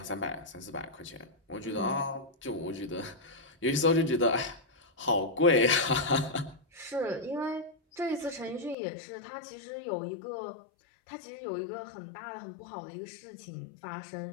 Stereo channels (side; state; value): right; drops out; at 8.8 s